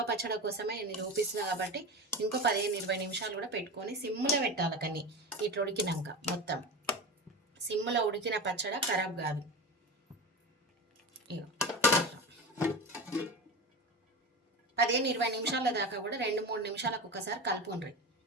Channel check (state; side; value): normal; both; correlation 0.26